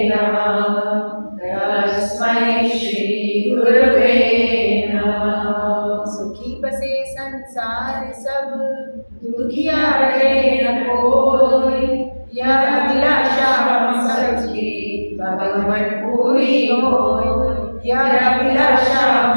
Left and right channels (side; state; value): both; inverted; correlation -1.00